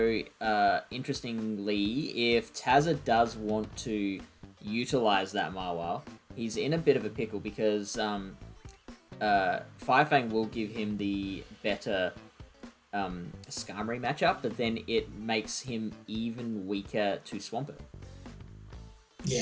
interestingly, if Tazza does want to utilize that Mawile, he's in a bit of a pickle because Firefang will give him the better Skarmory matchup, but then it makes him even weaker to Swampert.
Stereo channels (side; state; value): both; identical; correlation 1.00